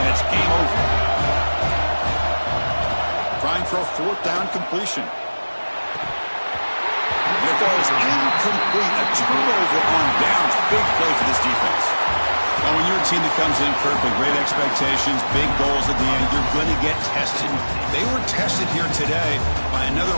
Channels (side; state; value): both; inverted; correlation -1.00